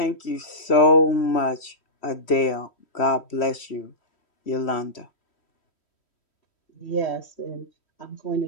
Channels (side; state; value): right; late; 3.1 ms